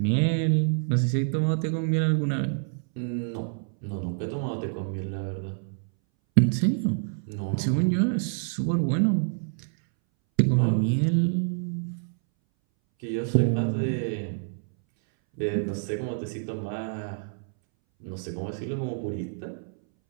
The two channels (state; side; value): silent; left; 60 dB below the other